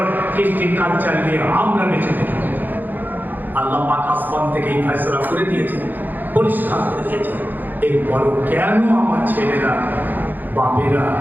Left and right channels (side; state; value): left; late; 0.087 ms